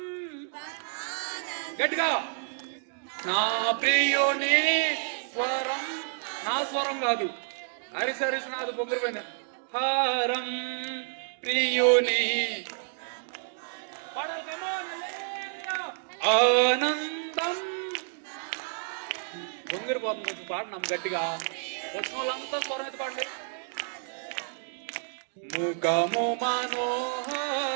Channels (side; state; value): left; silent; digital silence